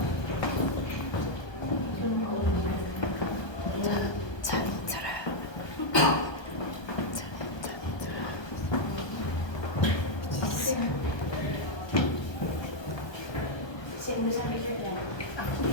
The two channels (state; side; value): late; right; 1.2 ms